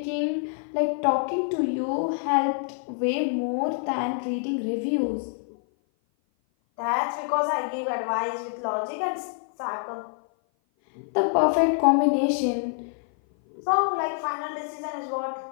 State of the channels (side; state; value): right; silent; 56 dB below the other